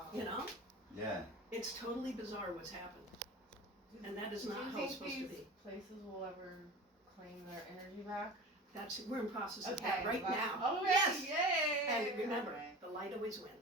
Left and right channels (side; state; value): both; normal; correlation 0.35